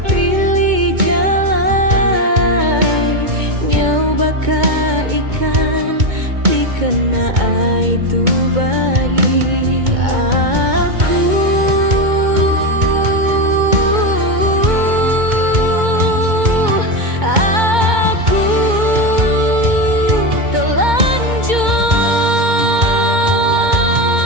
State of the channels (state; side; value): late; left; 2.2 ms